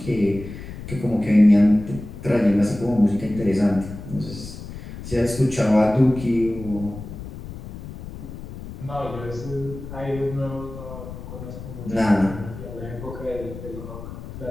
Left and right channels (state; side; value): noise; left; rumble, 12 dB below the sound